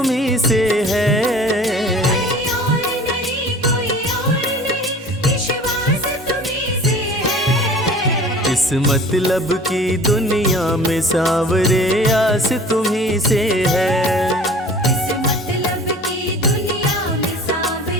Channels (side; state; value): both; normal; correlation 0.44